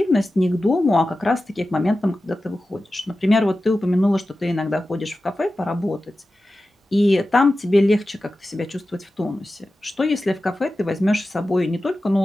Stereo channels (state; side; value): normal; both; correlation 0.94